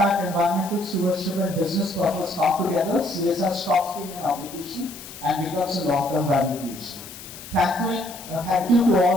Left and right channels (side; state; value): left; noise; hiss, 14 dB below the sound